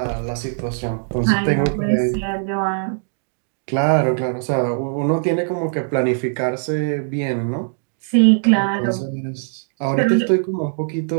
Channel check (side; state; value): left; silent; digital silence